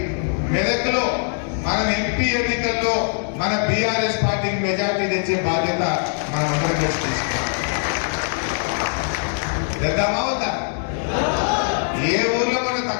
మెదక్లో మనం ఎంపీ ఎన్నికల్లో మన బీఆర్ఎస్ పార్టీకి మెజార్టీ తెచ్చే బాధ్యత మనం అందరం కలిసి తీసుకున్నాం. తెద్దామా వద్దా? ఏ ఊర్లో మనం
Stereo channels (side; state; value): right; silent; digital silence